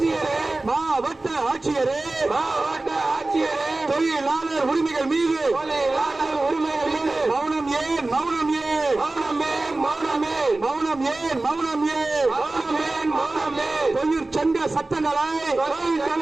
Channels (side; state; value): left; quieter; 3.0 dB